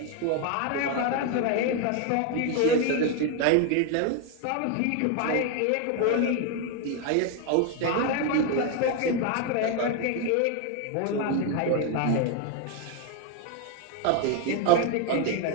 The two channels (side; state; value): both; different; correlation 0.01